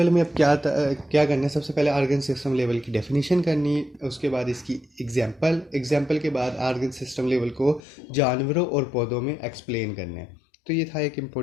में अब क्या करना है, सबसे पहले आर्गन सिस्टम लेवल की डेफिनेशन करनी है, उसके बाद इसकी एग्जांपल के बाद आर्गन सिस्टम लेवल को जानवरों और पौधों में एक्सप्लेन करना है। तो ये था एक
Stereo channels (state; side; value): drops out; right; at 7.8 s